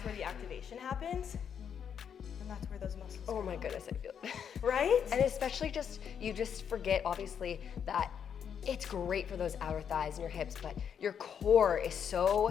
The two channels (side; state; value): right; quieter; 7.9 dB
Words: where the activation happens. And that's where those muscles Oh my goodness, I feel it. Right? And especially you just forget, obviously, that it's great for those outer thighs and your hips, but your core is